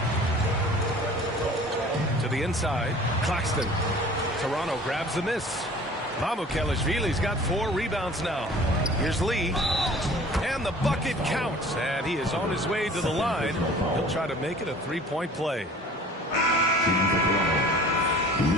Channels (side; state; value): both; normal; correlation 0.47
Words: To the inside. Claxton. Toronto grabs the miss. Mamukelashvili's got 4 rebounds now. Here's Lee. And the bucket counts. And he is on his way to the line. He'll try to make it a 3-point play. Lee.